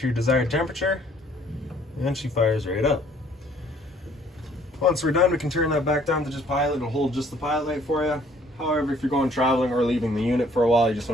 your desired temperature, and she fires right up. Once we're done, we can turn that back down to just pilot. It'll hold just the pilot light for you. However, if you're going traveling or leaving the unit for a while, you just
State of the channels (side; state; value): both; normal; correlation 0.60